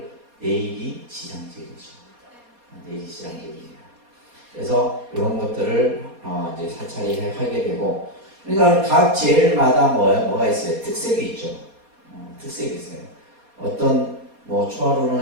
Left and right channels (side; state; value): left; late; 4.2 ms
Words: 내일이 지장제일이죠. 내일이 지장제일입니다. 그래서 이런 것들을 이제 사찰이 하게 되고, 그러니까 각 제일마다 뭐가 있어요? 특색이 있죠. 특색이 있어요. 어떤 뭐